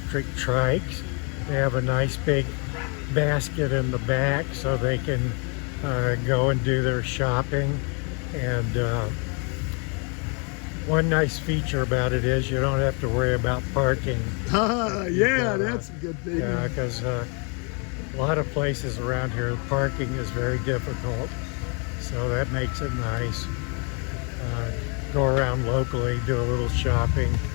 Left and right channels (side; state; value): right; quieter; 35.4 dB